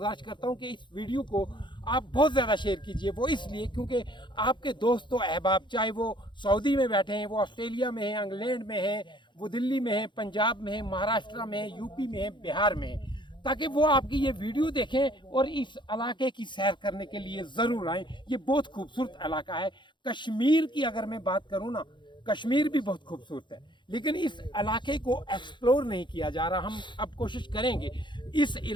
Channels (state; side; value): late; right; 0.23 ms